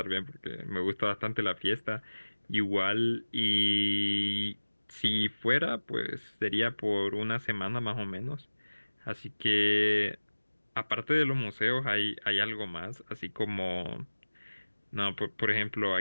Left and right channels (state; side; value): inverted; both; correlation -1.00